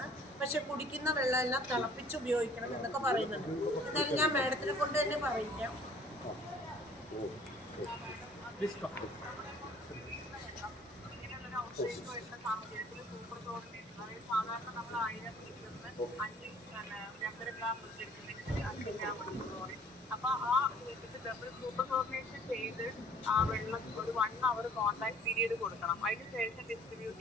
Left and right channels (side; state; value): both; normal; correlation 0.55